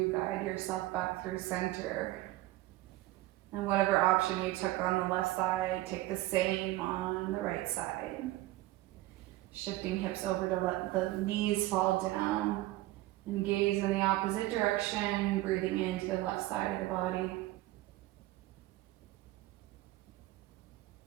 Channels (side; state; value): left; quieter; 17.5 dB